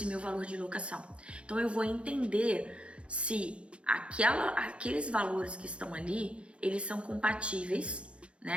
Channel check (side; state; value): left; late; 0.059 ms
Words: meu valor de locação. Então, eu vou entender se aqueles valores que estão ali, eles são compatíveis,